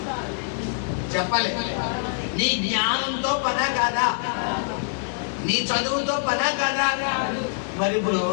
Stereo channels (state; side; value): silent; right; 62 dB below the other